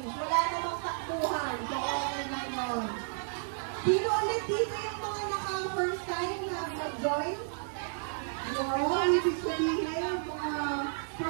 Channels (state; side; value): silent; left; digital silence